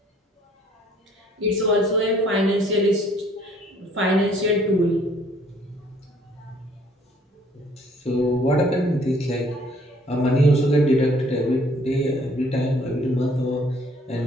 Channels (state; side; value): normal; both; correlation 0.60